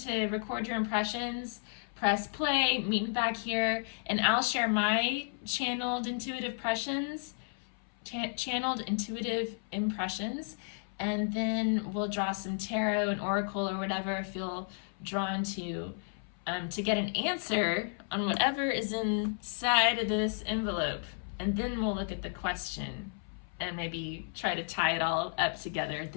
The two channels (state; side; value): silent; right; 56 dB below the other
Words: record your impressions, press play, meet me back here, and I'll share my channeled intuitive impressions, and then we'll draw some tarot and oracle or whatever I feel drawn to. to get an answer on whatever is inside of this envelope. And then we'll look at the question and maybe try to tie it all up together at